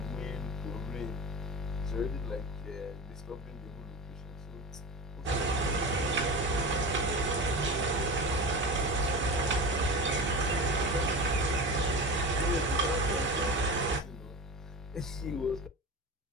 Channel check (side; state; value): both; normal; correlation 0.27